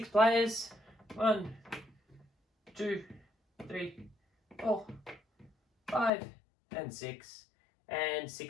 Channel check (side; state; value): right; drops out; at 6.1 s